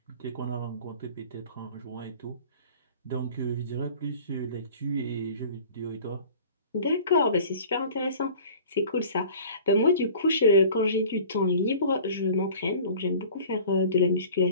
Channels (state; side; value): inverted; both; correlation -0.45